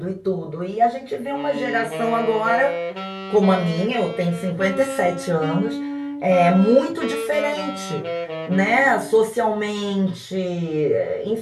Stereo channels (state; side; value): identical; both; correlation 1.00